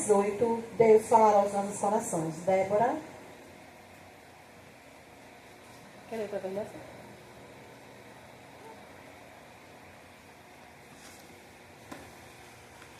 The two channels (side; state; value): both; identical; correlation 1.00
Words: Deus falará aos nossos corações. Débora. Quer ler para ver?